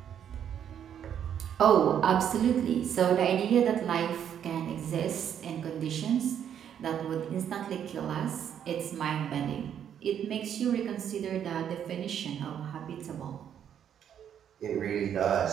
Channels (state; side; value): quieter; left; 9.1 dB